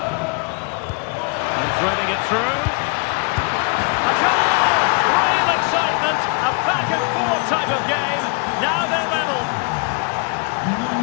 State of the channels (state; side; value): quieter; right; 35.1 dB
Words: And threading it through. A goal! Real excitement. A back-and-forth type of game. Now they're level.